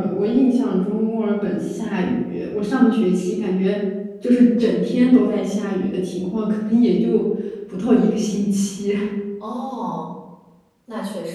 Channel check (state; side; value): identical; both; correlation 1.00